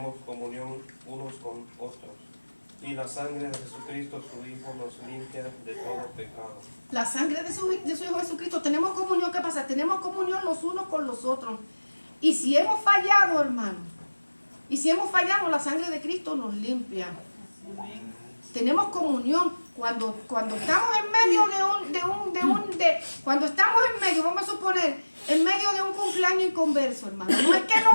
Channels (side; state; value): both; inverted; correlation -1.00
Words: comunión unos con otros. Y la sangre de Jesucristo, su Hijo, nos limpia de todo pecado. La sangre de su Hijo Jesucristo. Tenemos comunión, ¿qué pasa? Tenemos comunión los unos con los otros. Y si hemos fallado, hermano, y si hemos fallado, la sangre de Cristo nos limpia. Tenemos comunión Cuando estamos en medio cuando estamos en medio, vamos a suponer, en medio de un cumpleaños inconverso, hermano, no es que